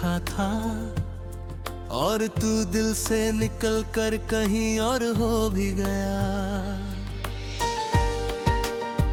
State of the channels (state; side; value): identical; both; correlation 1.00